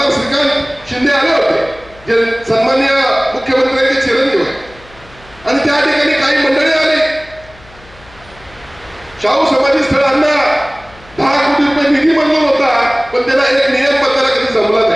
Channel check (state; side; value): noise; left; hum, 24 dB below the sound